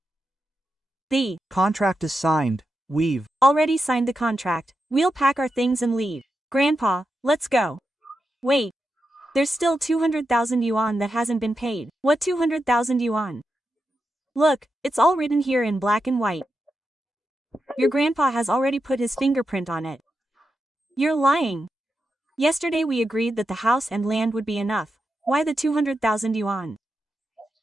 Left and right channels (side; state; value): both; normal; correlation 0.87